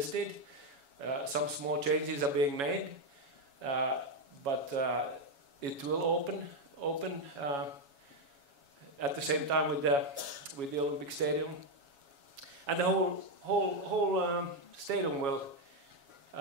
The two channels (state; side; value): late; left; 7.2 ms